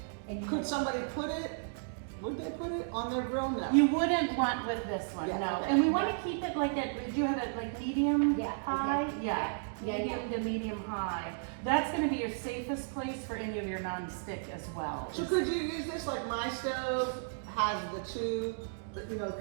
And you Could somebody put it, would they put it on their grill? No. You wouldn't want with this one, Yeah, no. okay. And we want to keep it like at, did you have it like medium Yeah, high? okay. Yeah, Yeah, medium to medium high. That's going to be your safest place for any of your non-stick as well. So could you use this, like my stove has the two, you know,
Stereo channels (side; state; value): left; silent; digital silence